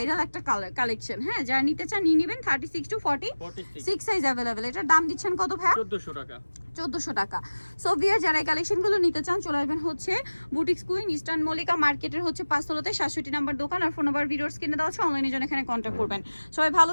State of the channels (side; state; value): both; inverted; correlation -1.00